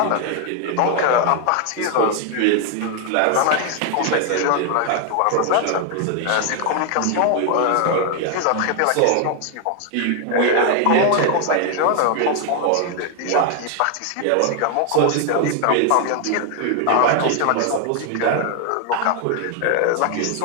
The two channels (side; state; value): both; different; correlation 0.00